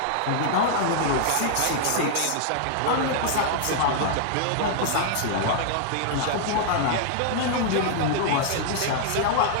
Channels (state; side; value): different; both; correlation -0.01